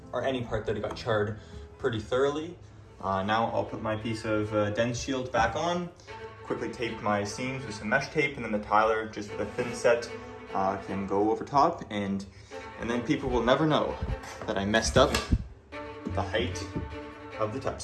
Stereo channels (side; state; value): both; identical; correlation 1.00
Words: or any part that it got charred, pretty thoroughly. Now I'll put my piece of dense shield back on, quickly tape my seams with some mesh tape, and then the tiler, just with a thin set, can go over top, and then people will never know that I messed up the height of the tub